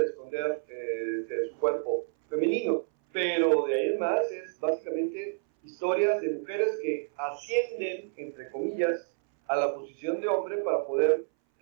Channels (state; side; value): silent; left; 58 dB below the other